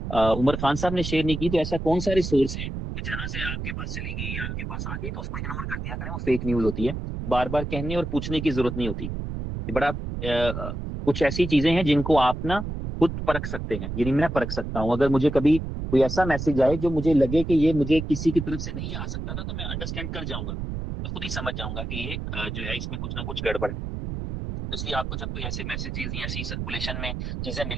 उमर खान साहब ने शेयर नहीं की, तो ऐसा कौन सा रिसोर्स है कि जहां से आपके पास चली गई या आपके पास आ गई तो उसको इग्नोर कर दिया करें, वो फेक न्यूज होती है। बार बार कहने और पूछने की जरूरत नहीं होती। ये बड़ा कुछ ऐसी चीजें हैं जिनको आप ना खुद परख सकते हैं, यानी मैं परख सकता हूँ। अगर मुझे कभी कोई ऐसा मैसेज आए जो मुझे लगे कि ये मुझे किसी की तरफ से नहीं आ सकता था, तो मैं अंडरस्टैंड कर जाऊंगा, मैं खुद ही समझ जाऊंगा कि ये जो है इसमें कुछ ना कुछ गड़बड़ है। इसलिए आपको जब कोई ऐसे मैसेजेस या ऐसी सर्कुलेशन में चीजें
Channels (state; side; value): noise; right; rumble, 5 dB below the sound